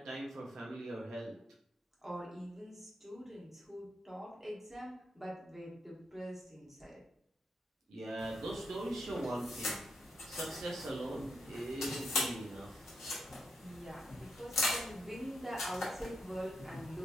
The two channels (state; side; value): normal; both; correlation 0.81